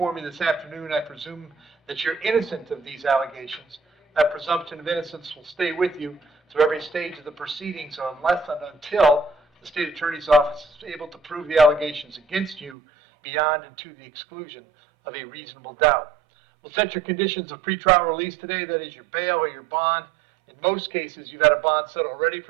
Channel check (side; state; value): left; drops out; at 12.8 s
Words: me this afternoon, I presume that you're innocent of these allegations. That presumption of innocence will stay with you through every stage of the proceedings unless and until the state attorney's office is able to prove the allegations against you beyond and to the exclusion of a reasonable doubt. We'll set your conditions of pretrial release today, that is your bail or your bond. In most cases, you've had a bond set already